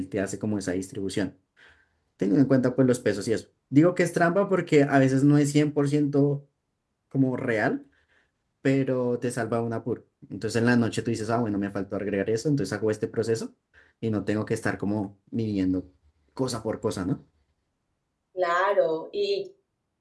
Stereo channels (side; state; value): both; identical; correlation 1.00